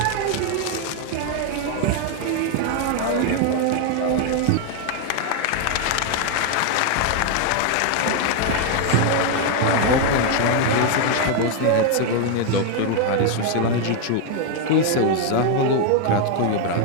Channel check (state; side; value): different; both; correlation 0.01